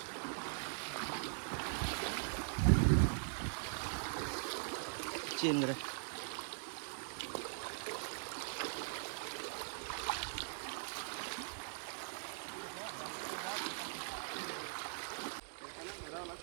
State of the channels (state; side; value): silent; left; digital silence